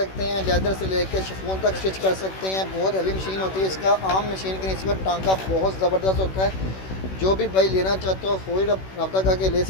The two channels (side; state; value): right; late; 16 ms